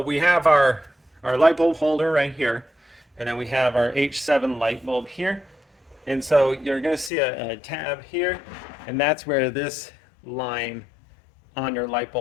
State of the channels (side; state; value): right; drops out; at 7.1 s